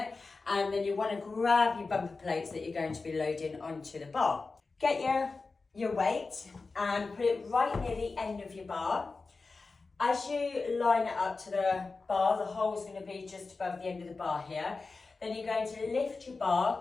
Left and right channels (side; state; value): right; quieter; 4.0 dB